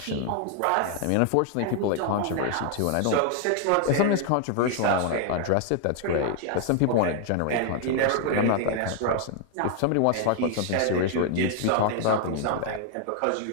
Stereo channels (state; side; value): different; both; correlation 0.00